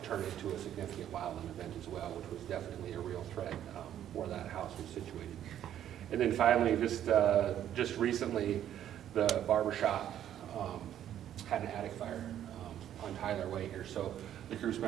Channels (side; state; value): left; quieter; 10.9 dB